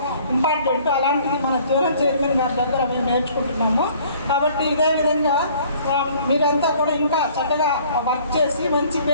ఇంపార్టెంట్. అలాంటిది మన జోనల్ చైర్మన్ గారి దగ్గర మేము నేర్చుకుంటున్నాము. కాబట్టి ఇదే విధంగా మీరంతా కూడా ఇంకా చక్కగా వర్క్ చేసి మంచి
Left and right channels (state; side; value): inverted; both; correlation -0.55